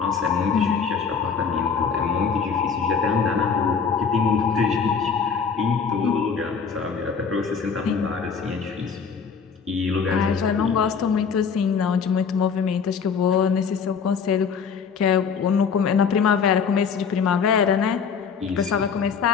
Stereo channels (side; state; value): right; quieter; 6.1 dB